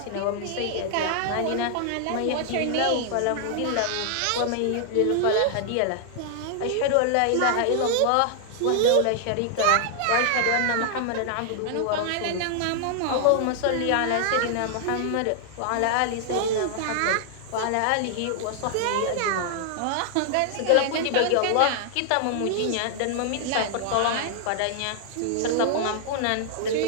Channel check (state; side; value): different; both; correlation 0.00